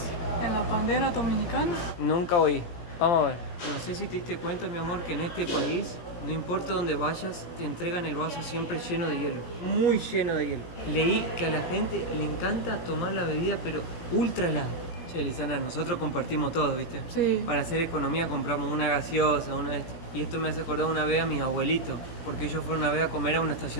en la bandera dominicana. Nunca oí. Vamos a ver. No sé si te diste cuenta, mi amor, que en este país, no importa dónde vayas, te entregan el vaso siempre lleno de hielo. Muy lleno de hielo. Leí que a la gente le encanta tomar la bebida, pero ultra helada. Che, Lisana, nosotros compartimos todo, ¿viste? Sí. Para hacer economía compramos una gaseosa, una de esto. Y esto me hace acordar una vez a mis abuelitos, porque ellos fueron una vez a comer a una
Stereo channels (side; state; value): right; late; 17 ms